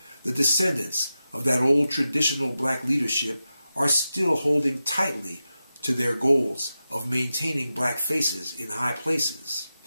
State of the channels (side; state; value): both; inverted; correlation -0.92